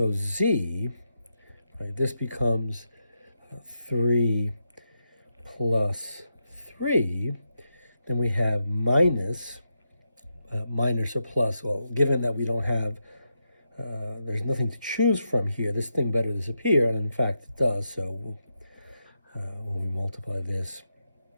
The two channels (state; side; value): inverted; both; correlation -0.85